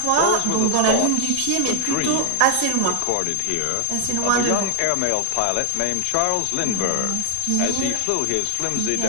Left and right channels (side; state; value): both; different; correlation 0.00